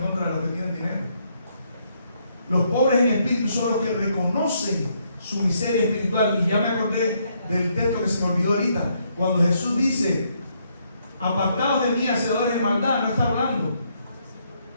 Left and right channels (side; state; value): both; inverted; correlation -0.73